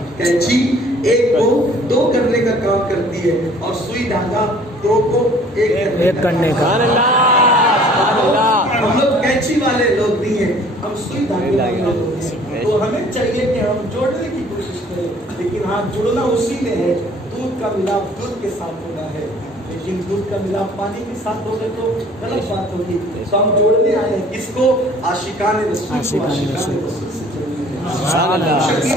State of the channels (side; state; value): both; normal; correlation 0.54